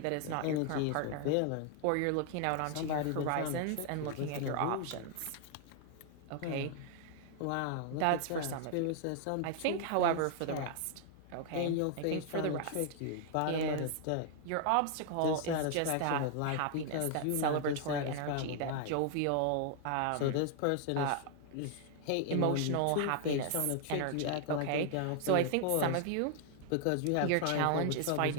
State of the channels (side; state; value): both; different; correlation 0.00